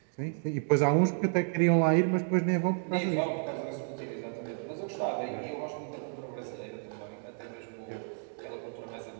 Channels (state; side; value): silent; left; 57 dB below the other